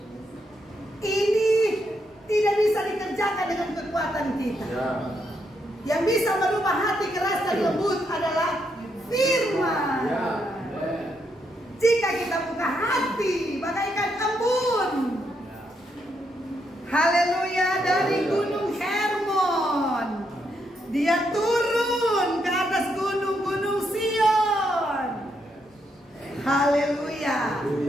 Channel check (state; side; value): normal; both; correlation 0.78